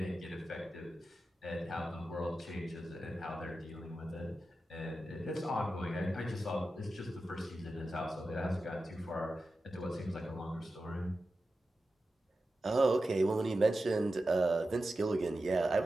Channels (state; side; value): normal; both; correlation 0.92